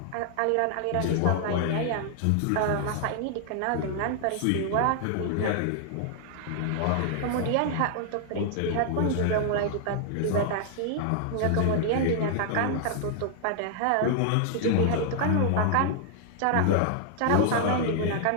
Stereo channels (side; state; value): both; different; correlation 0.00